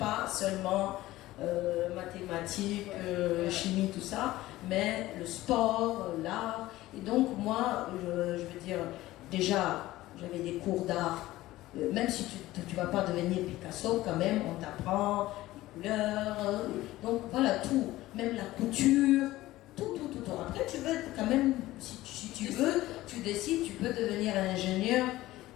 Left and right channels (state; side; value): quieter; right; 16.8 dB